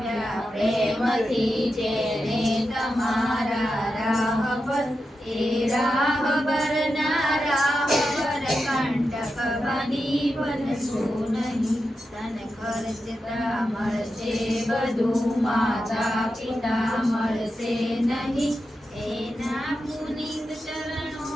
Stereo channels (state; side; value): normal; both; correlation 0.89